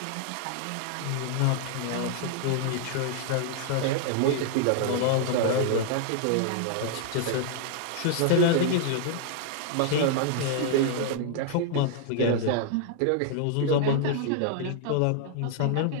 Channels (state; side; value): different; both; correlation -0.01